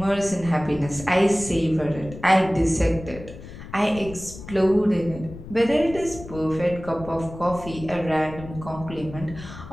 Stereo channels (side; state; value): left; noise; rumble, 14 dB below the sound